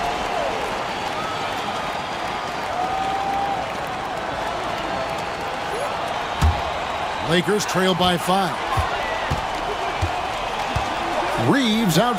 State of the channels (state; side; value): identical; both; correlation 1.00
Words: Lakers trail by 5. Reeves